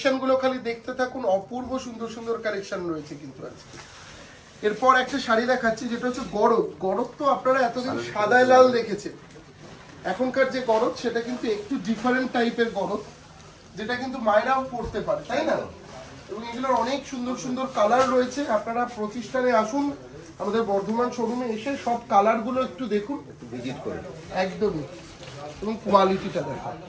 খালি দেখতে থাকুন, অপূর্ব সুন্দর সুন্দর কালেকশন রয়েছে কিন্তু আজকে। এরপর একটা শাড়ি দেখাচ্ছি যেটা হচ্ছে গরদ। গরদ তো আপনারা এতদিন সাদায় লাল দেখেছেন, এখনকার যে গরদ সেটা কিন্তু একটু ডিফারেন্ট টাইপের গরদ, যেটা কিন্তু মায়েরাও পরতে পারে, তাই না? এবং এগুলোর অনেক সুন্দর সুন্দর কালার রয়েছে। আপনারা প্রতিষ্ঠানে আসুন, আমাদের বর্ধমান শোরুমে এসে সব কালারগুলো একটু দেখুন, একটু ভিজিট করুন। একদমই। এবং কোয়ালিটিটা দেখুন,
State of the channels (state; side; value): identical; both; correlation 1.00